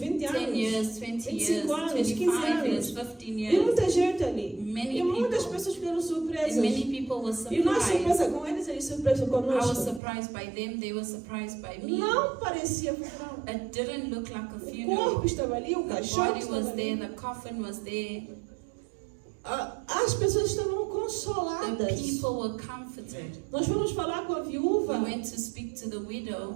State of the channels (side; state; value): left; drops out; at 10.0 s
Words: 10 anos, years, 20 years, 25 anos, 15 25 years, anos. 15 E years. muita gente ali. Many E muitas people. pessoas ficaram And surpresas. many people were E nós surprised. surpresa com eles, eles surpresa I was conosco. surprised by them, they were surprised by me. Não parecia funeral. It didn't look like a O funeral. corpo estava ali, o The caixão body estava was there, ali. the coffin was there. As pessoas estavam The consoladas. people were comforted. Nós fomos falar com a We viúva. went to speak to the widow.